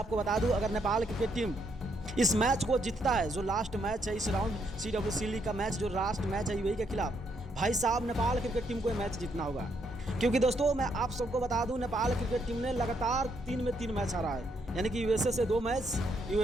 बता दूं, अगर नेपाल क्रिकेट टीम इस मैच को जीतता है, जो लास्ट मैच है इस राउंड CWC लीग का मैच, जो लास्ट मैच है यूएई के खिलाफ, भाई साहब नेपाल क्रिकेट टीम को ये मैच जीतना होगा। क्योंकि दोस्तों, मैं आप सबको बता दूं, नेपाल क्रिकेट टीम ने लगातार 3 में 3 मैच हारा है। यानी कि यूएसए से 2 मैच,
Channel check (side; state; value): both; normal; correlation 0.74